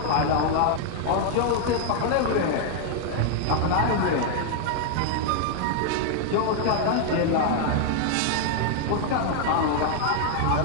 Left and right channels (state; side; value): different; both; correlation 0.00